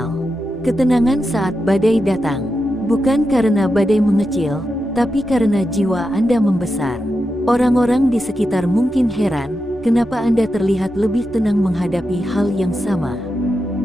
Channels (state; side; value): normal; both; correlation 0.88